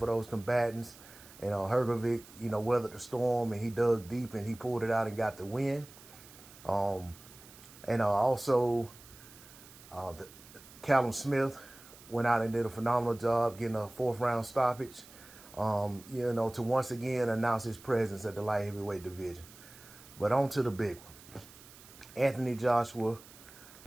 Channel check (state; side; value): noise; right; hiss, 20 dB below the sound